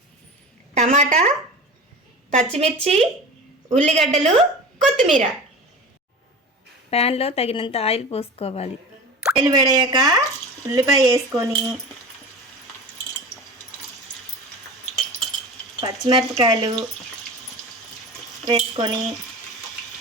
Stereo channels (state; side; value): normal; both; correlation 0.34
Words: టమాటా, పచ్చిమిర్చి, ఉల్లిగడ్డలు, కొత్తిమీర. ప్యాన్లో తగినంత ఆయిల్ పోసుకోవాలి. ఆయిల్ వేడయ్యాక ఉల్లిపాయ వేసుకొని పచ్చిమిరపకాయలు వేసుకొని